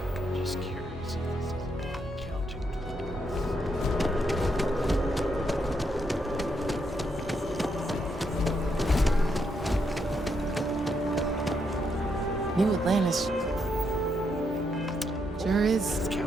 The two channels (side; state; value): both; normal; correlation 0.78